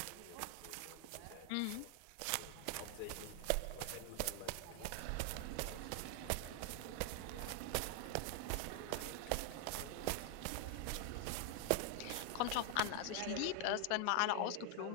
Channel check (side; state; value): both; different; correlation 0.00